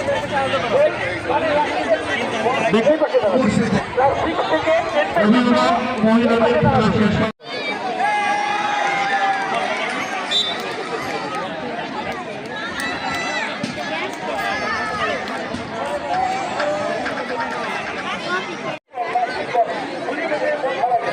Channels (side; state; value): both; identical; correlation 1.00